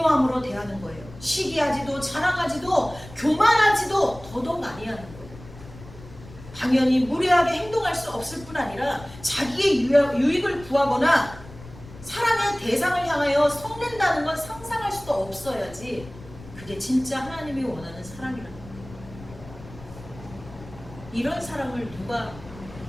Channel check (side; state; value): left; noise; rumble, 18 dB below the sound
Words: 대하는 거예요. 시기하지도 자랑하지도 교만하지도 더더욱 아니하는 거예요. 당연히 무례하게 행동할 수 없을 뿐 아니라 자기의 유익을 구하거나 사랑의 대상을 향하여 성낸다는 건 상상할 수도 없어야지 그게 진짜 하나님이 원하는 사랑이라는 거예요. 이런 사랑을 누가